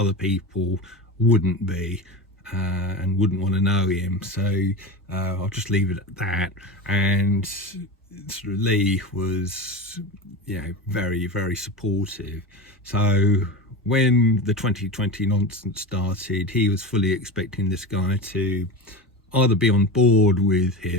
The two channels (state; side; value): normal; both; correlation 0.25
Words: people wouldn't be, and wouldn't want to know him. So I'll just leave it at that. And sort of Lee was very, very supportive. So when the 2020 nonsense started, he was fully expecting this guy to either be on board with